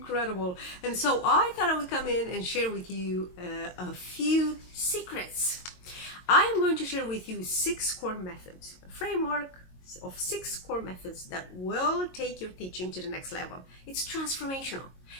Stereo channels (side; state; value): right; late; 22 ms